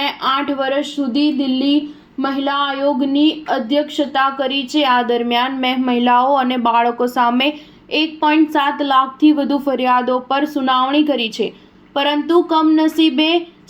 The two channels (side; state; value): both; identical; correlation 1.00